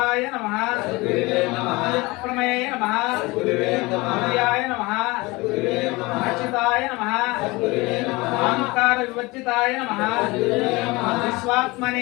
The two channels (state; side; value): quieter; right; 23.2 dB